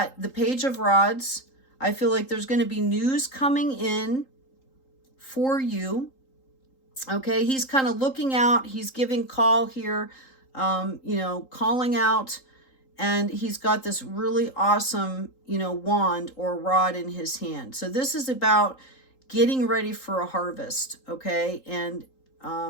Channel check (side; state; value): right; late; 3.8 ms